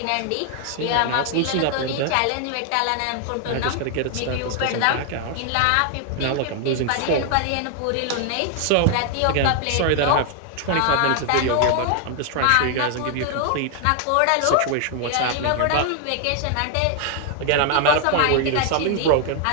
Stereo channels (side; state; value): both; different; correlation 0.00